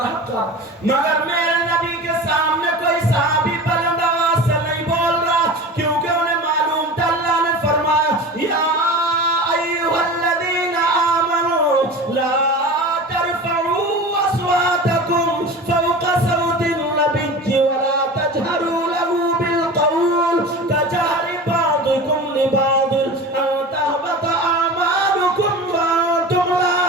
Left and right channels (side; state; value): both; normal; correlation 0.33